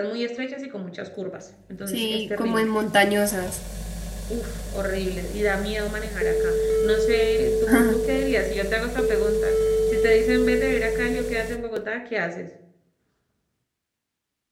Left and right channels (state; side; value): identical; both; correlation 1.00